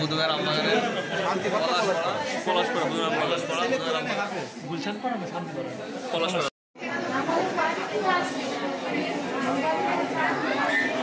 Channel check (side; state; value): both; identical; correlation 1.00